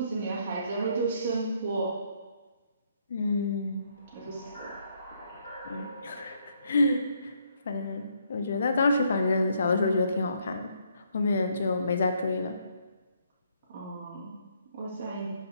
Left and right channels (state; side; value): inverted; both; correlation -0.71